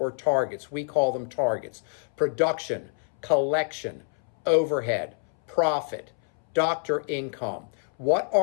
targets. We call them targets. Production, collection, overhead, profit, doctor income. What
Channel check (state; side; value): silent; right; 60 dB below the other